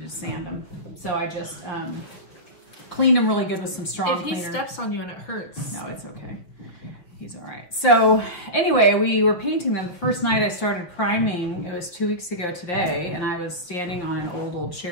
to sand them. So I just cleaned them really good with some strong cleaner. If he steps on you and it hurts. No, it's okay. He's all right. So anyway, we were painting them. The first night I started priming, it was 2 weeks ago today, and I was standing on an old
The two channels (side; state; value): right; late; 6.1 ms